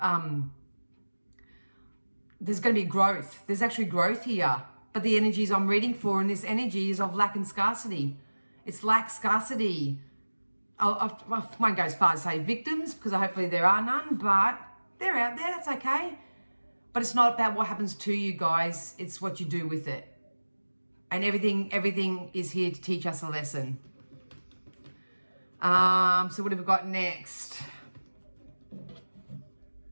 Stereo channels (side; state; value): both; inverted; correlation -1.00